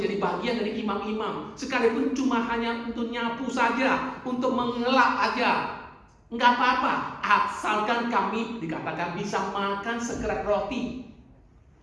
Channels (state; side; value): identical; both; correlation 1.00